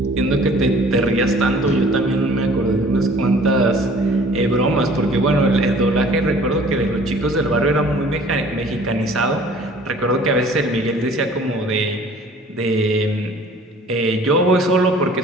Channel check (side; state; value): both; normal; correlation 0.51